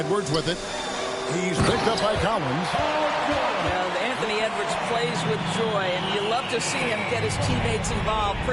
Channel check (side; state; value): both; identical; correlation 1.00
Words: with it. He's picked up by Collins. Anthony Edwards plays with joy, and you love to see him get his teammates involved.